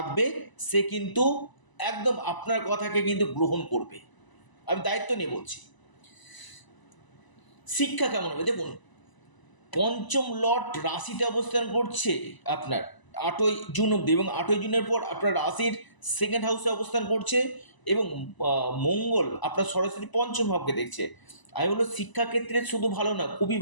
সে কিন্তু একদম আপনার কথাকে কিন্তু গ্রহণ করবে। আমি দায়িত্ব নিয়ে বলছি। শিক্ষা কেমন হবে? দেখুন, পঞ্চম লর্ড রাশিতে অবস্থান করছে আপনার 8ই জুন অব্দি, এবং 8ই জুনের পর আপনার রাশির সেকেন্ড হাউসে অবস্থান করছে, এবং মঙ্গল আপনার সরাসরি পঞ্চম ভাবকে দেখছে। আমি বলবো শিক্ষাক্ষেত্রে শুধু ভালো না, খুবই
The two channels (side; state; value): right; late; 1.0 ms